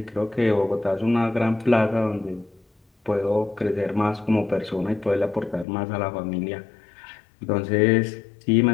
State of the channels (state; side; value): drops out; right; at 5.7 s